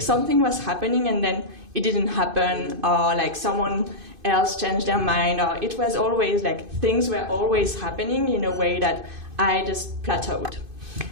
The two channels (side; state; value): left; late; 2.5 ms